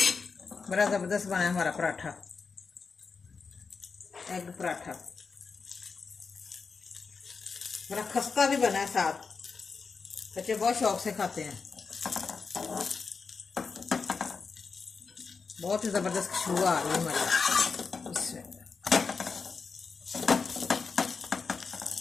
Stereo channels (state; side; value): quieter; right; 5.0 dB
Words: बड़ा ज़बरदस्त बना है हमारा पराठा, एग पराठा। बड़ा खस्ता भी बना है साथ, बच्चे बहुत शौक से खाते हैं। बहुत ही ज़बरदस्त खुशबू आ रही है हमारी। इसमें